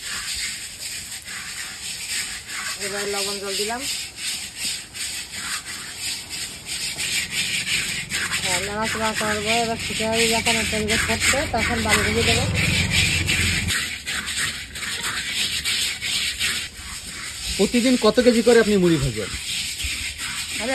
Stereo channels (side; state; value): both; identical; correlation 1.00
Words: এবার লবণ জল দিলাম, নাড়াচাড়া করবো। এবার খিচুড়ি যখন তেলটা থাকবে তখন বালি দিয়ে দেবো। প্রতিদিন কত কেজি করে আপনি মুড়ি ভাজেন? আমি